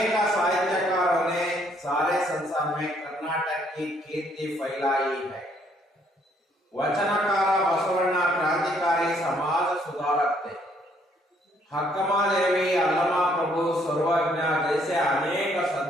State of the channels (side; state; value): both; normal; correlation 0.67